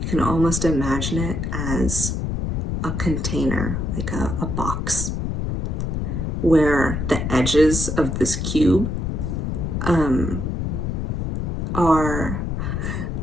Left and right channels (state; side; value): noise; left; rumble, 1 dB below the sound